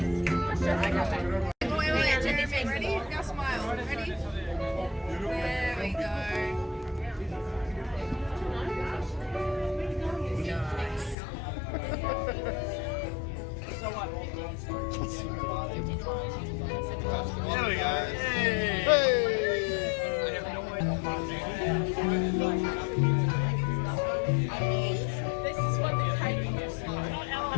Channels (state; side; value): drops out; right; at 11.2 s